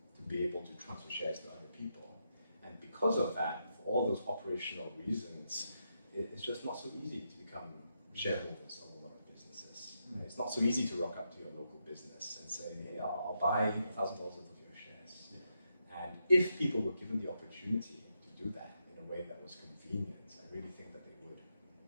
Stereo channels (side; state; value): both; inverted; correlation -0.82